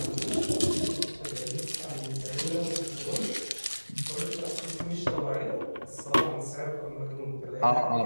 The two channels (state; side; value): inverted; both; correlation -1.00